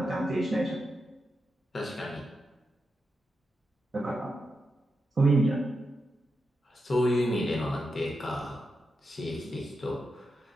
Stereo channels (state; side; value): normal; both; correlation 0.87